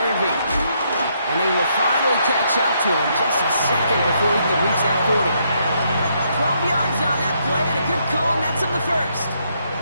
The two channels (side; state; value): both; inverted; correlation -0.74